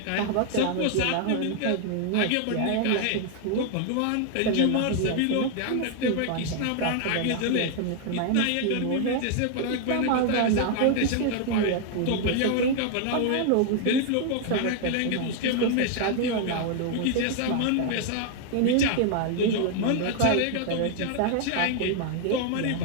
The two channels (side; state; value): both; different; correlation 0.00